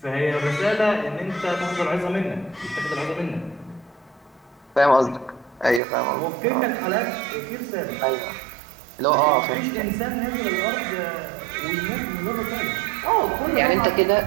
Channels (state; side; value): drops out; left; at 5.8 s